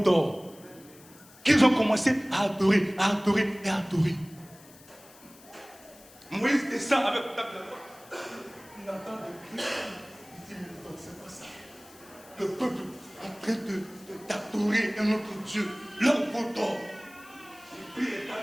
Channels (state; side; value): noise; left; hiss, 23 dB below the sound